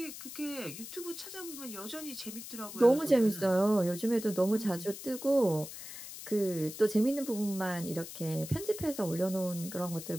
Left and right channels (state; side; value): noise; left; hiss, 11 dB below the sound